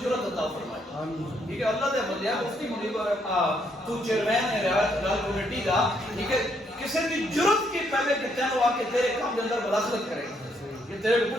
جرأت عطا فرمائے, ٹھیک ہے. اللہ دے بندے مفتی منیر تو چیئرمین ہے رائے کمیٹی کا, ٹھیک ہے, کسی بھی جرأت کے پہلے کہ تینوں آ کے تیرے کام کے اندر مداخلت کرے کہ تیرے کو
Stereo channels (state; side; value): normal; both; correlation 0.72